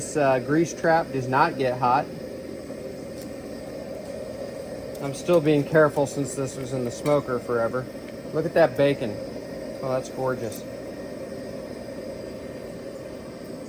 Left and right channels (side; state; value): both; identical; correlation 1.00